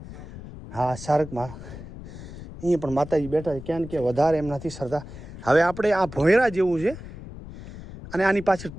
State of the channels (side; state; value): left; noise; rumble, 13 dB below the sound